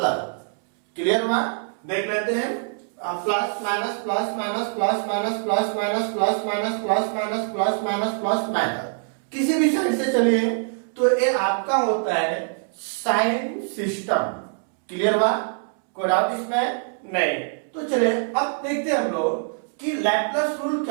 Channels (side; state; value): left; silent; 63 dB below the other